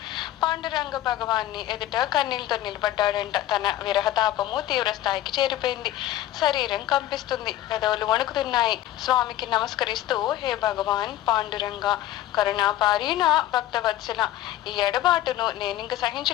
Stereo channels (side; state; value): right; quieter; 13.7 dB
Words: పాండురంగ భగవాన్ని ఎదుట కన్నీళ్లతో నిలబడ్డాడంట. తన విరహతాపము తీవ్ర స్థాయికి చేరిపోయింది. శరీరం కంపిస్తుంది, పెదవులు వణుకుతున్నాయి. స్వామికి నమస్కరిస్తూ, హే భగవాన్ పాండురంగ, కరుణాపారీణ భక్తవత్సల, ఈ ఎడబాటును నేనింక